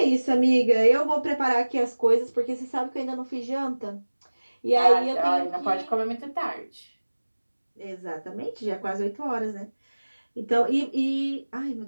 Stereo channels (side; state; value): both; inverted; correlation -1.00